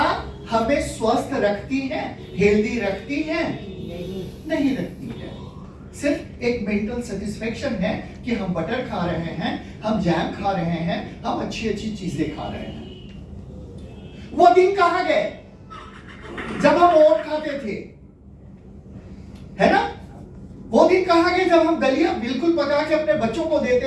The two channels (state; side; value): identical; both; correlation 1.00